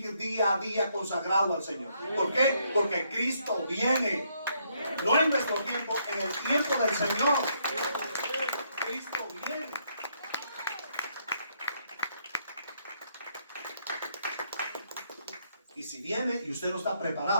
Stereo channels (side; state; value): both; inverted; correlation -0.73